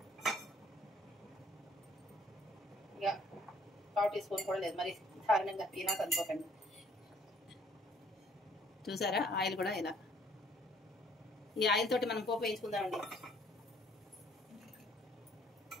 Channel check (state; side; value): normal; both; correlation 0.60